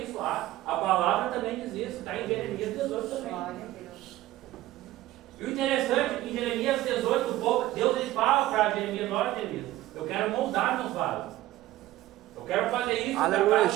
A palavra também diz isso. Está em Jeremias 18 também. Glória a Deus. E o interessante é que em Jeremias 18, Deus ele fala para Jeremias, olha Jeremias, eu quero moldar meus vasos. Eu quero fazer isso Aleluia, para a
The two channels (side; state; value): left; quieter; 15.5 dB